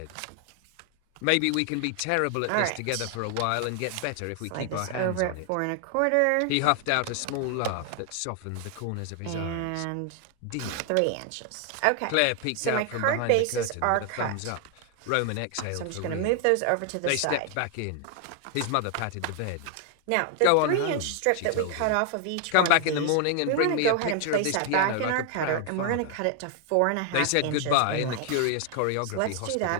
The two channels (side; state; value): both; different; correlation 0.00